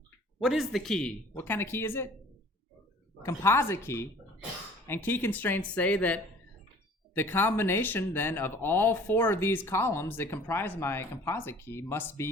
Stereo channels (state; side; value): normal; both; correlation 0.50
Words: What is the key? What kind of key is it? Composite key. And key constraints say that the combination then of all 4 of these columns that comprise my composite key must be